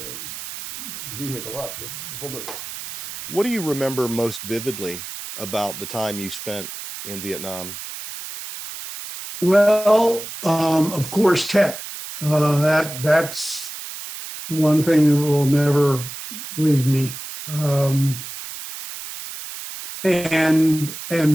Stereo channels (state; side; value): noise; right; hiss, 10 dB below the sound